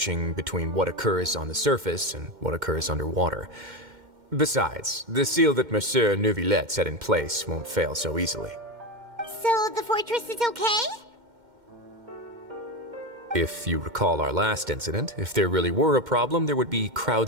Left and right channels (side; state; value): left; late; 2.1 ms